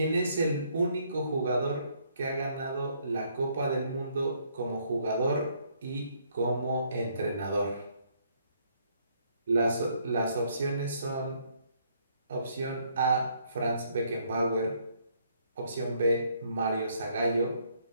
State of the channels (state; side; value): inverted; both; correlation -0.68